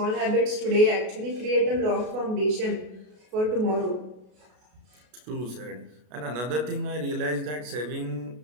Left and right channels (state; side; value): late; left; 33 ms